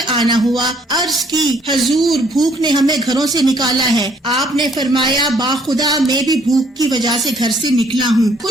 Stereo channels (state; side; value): normal; both; correlation 0.63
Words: آنا ہوا؟ عرض کی حضور بھوک نے ہمیں گھروں سے نکالا ہے۔ آپ نے فرمایا باخدا میں بھی بھوک کی وجہ سے گھر سے نکلا ہوں۔